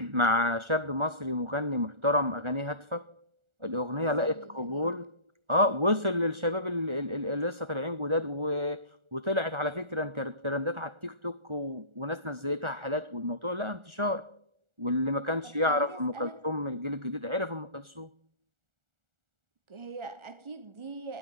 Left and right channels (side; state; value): left; late; 1.4 ms